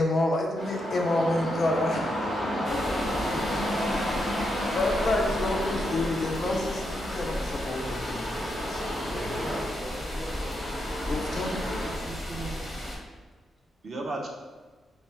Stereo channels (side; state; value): both; normal; correlation 0.82